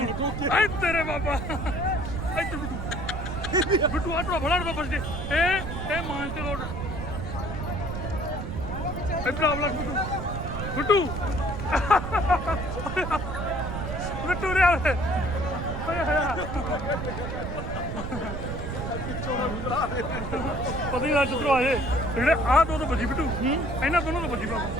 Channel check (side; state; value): right; noise; rumble, 5 dB below the sound